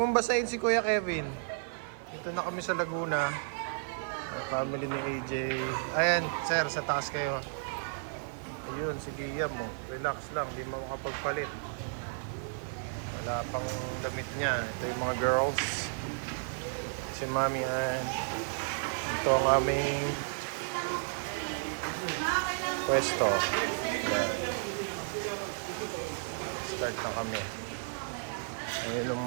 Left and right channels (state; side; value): silent; left; 56 dB below the other